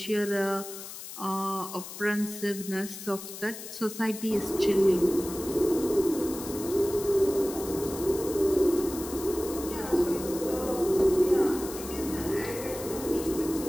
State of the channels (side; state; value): left; noise; hiss, 11 dB below the sound